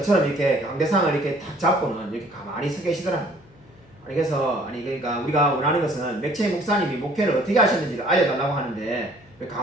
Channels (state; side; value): noise; left; hum, 28 dB below the sound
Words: 이렇게 강대상을 이렇게 탁 잡고는 이렇게 가만히 서 계시더라고요. 그래서 그러니까 우리가 원하는 것은 맥체 목사님이 목회를 어떻게 하셨는지를 알려달라고 하는데 왜